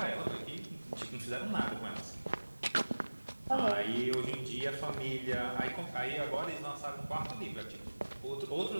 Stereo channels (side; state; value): both; inverted; correlation -1.00